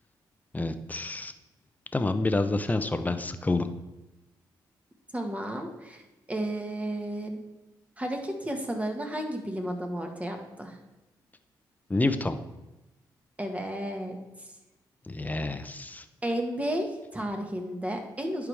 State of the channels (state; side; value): normal; both; correlation 0.86